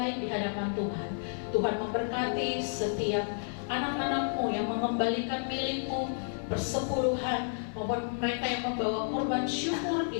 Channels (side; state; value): right; silent; 57 dB below the other